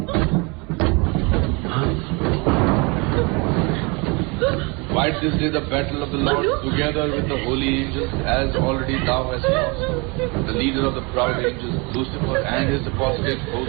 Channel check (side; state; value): left; quieter; 29.2 dB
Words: Fight this day the battle of the Lord together with the holy angels, as already thou hast lost the leader of the proud angels, Lucifer, and his apostate